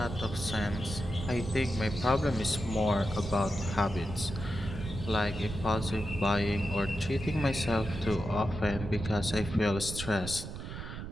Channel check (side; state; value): right; noise; rumble, 8 dB below the sound